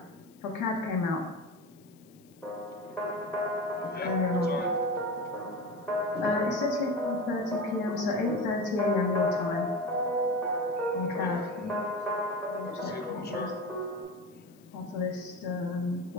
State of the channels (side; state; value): left; noise; hiss, 30 dB below the sound